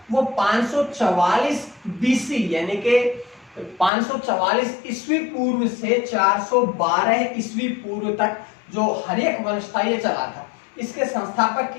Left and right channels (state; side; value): drops out; right; at 3.9 s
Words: वो 544 बीसी यानी कि 544 ईस्वी पूर्व से 412 ईस्वी पूर्व तक जो हर्यक वंश था ये चला था। इसके संस्थापक